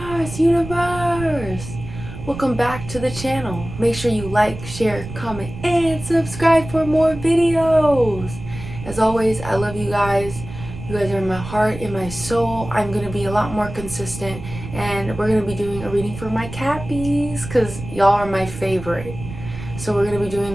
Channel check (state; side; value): noise; right; rumble, 11 dB below the sound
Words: Welcome back to the channel. Make sure you like, share, comment, and subscribe for more videos. As always, I love you guys. You guys are in my heart, in my soul. I'm going to be a lot more consistent, and we're going to be doing a reading for my Cappies because y'all are my favorite. So we're going to be doing